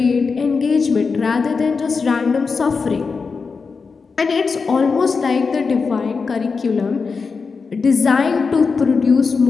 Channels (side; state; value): right; quieter; 4.9 dB